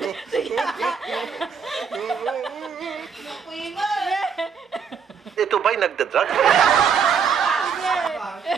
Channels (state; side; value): quieter; left; 6.5 dB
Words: Ito ba'y nagdadrag?